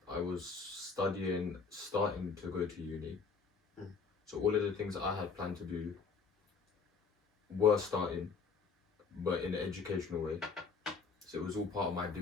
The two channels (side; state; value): right; quieter; 5.2 dB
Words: I was starting to go to uni. So all of the things that I had planned to do were starting, but in an educational way. So it was all part of my